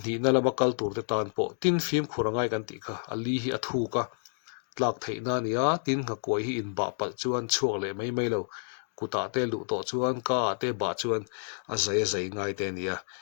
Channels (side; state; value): right; silent; digital silence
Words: ni na lama kal tur te tan po tin phim khurangai kan ti kha ali hi athu ka tlak theina nia tin nga koi hi in ba pal chuan chuak le mai lo kuta te lu to chuan ka te ba chuan a zai ngai te nia